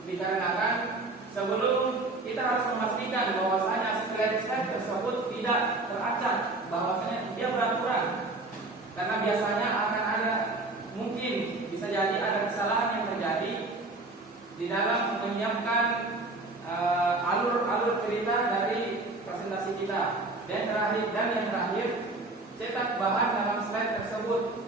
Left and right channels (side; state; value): left; quieter; 3.1 dB